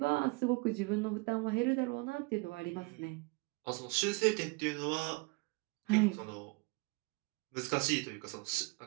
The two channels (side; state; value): left; quieter; 27.0 dB